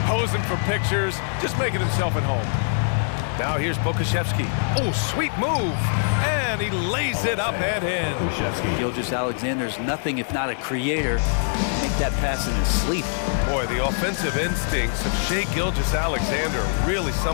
posing for pictures, just making himself at home. Now here's Pokushevsky. Oh, sweet move. And he lays it up and in. Gilgeous-Alexander's nothing if not a creator. Make that pass in his sleep. Boy, the offensive instincts of Shai Gilgeous-Alexander are really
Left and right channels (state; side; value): silent; right; 59 dB below the other